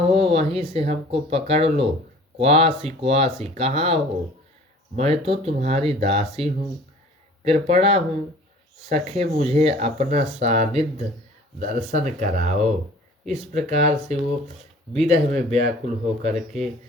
वहीं से हमको पकड़ लो। क्वासी क्वासी, कहाँ हो? मैं तो तुम्हारी दासी हूँ, कृपणा हूँ। सखे मुझे अपना सानिध्य दर्शन कराओ। इस प्रकार से वो विरह में व्याकुल होकर के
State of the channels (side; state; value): both; normal; correlation 0.47